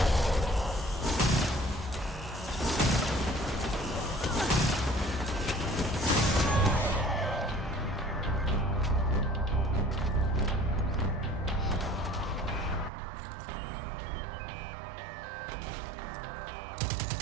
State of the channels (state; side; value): drops out; left; at 12.9 s